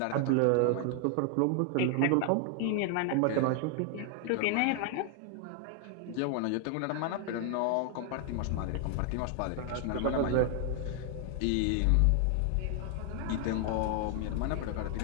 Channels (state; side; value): different; both; correlation 0.00